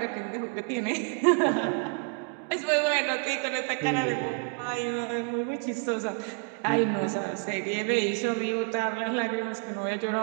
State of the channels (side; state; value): left; quieter; 39.9 dB